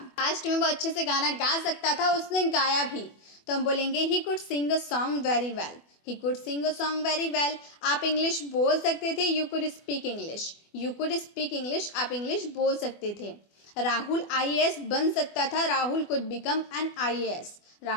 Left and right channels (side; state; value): right; late; 24 ms